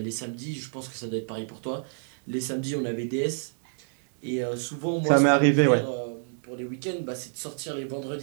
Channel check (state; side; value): silent; left; digital silence